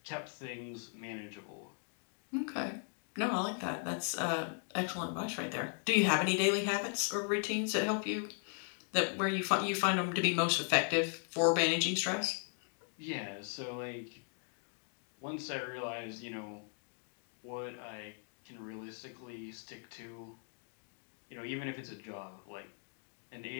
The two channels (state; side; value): silent; right; 53 dB below the other